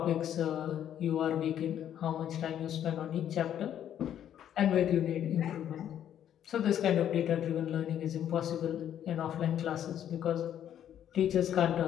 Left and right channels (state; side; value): quieter; right; 10.2 dB